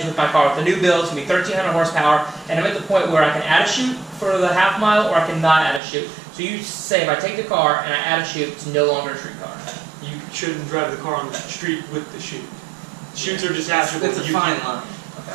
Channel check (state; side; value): drops out; left; at 5.8 s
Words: with my car with the new build. It's going to be 1,300 horsepower, and I'm at the point where I can add a chute for the half mile or I can not add a chute. So you say if I take the car and I add a chute, it's no longer a streetcar. You shouldn't drive the car on the street with the chute. Chutes are detachable. It's a fine line.